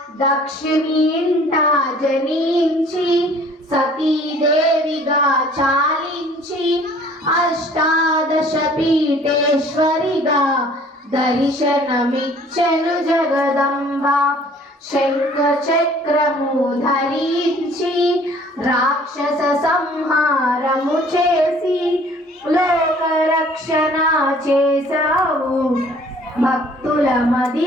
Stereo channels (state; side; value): normal; both; correlation 0.54